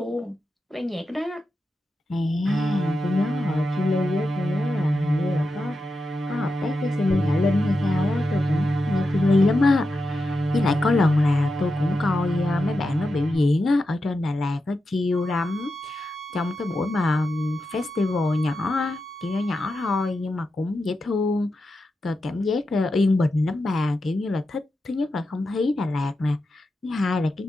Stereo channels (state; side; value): normal; both; correlation 0.89